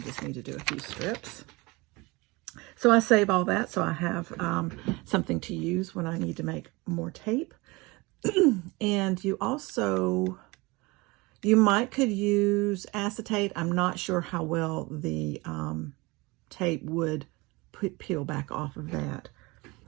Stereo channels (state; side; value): quieter; left; 24.1 dB